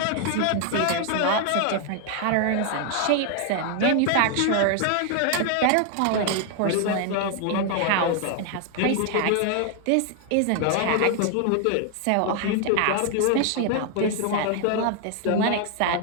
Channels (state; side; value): different; both; correlation 0.00